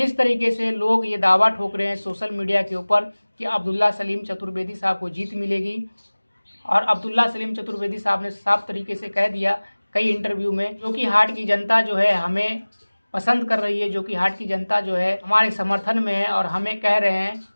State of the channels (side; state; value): both; inverted; correlation -1.00